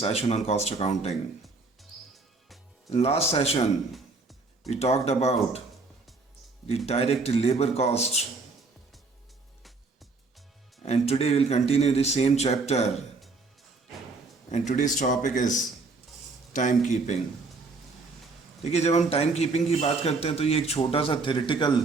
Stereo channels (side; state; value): left; quieter; 3.9 dB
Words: on cost accounting. In last session, we talked about the direct labor cost, and today we'll continue the same chapter. And today's topic is time keeping. देखिए, जब हम time keeping की बात करते हैं तो ये एक छोटा सा थ्योरेटिकल